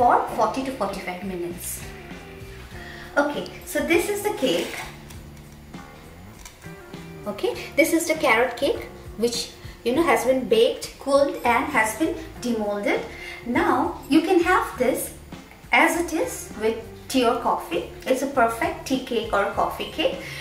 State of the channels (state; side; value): identical; both; correlation 1.00